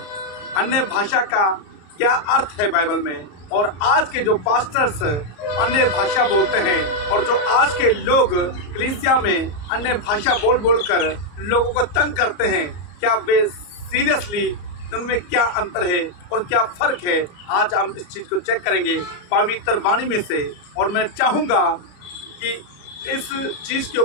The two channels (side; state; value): right; late; 34 ms